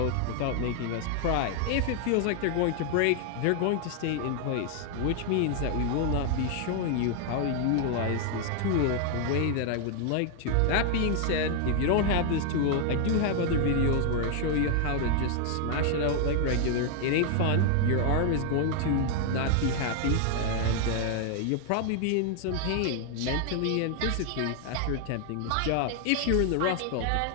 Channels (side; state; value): both; different; correlation 0.00